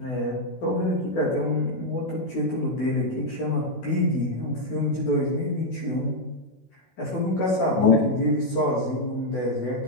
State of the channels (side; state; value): right; late; 16 ms